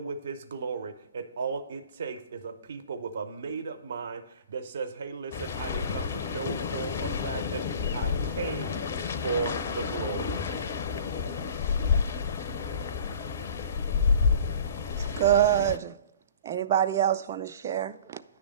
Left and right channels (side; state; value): both; inverted; correlation -0.44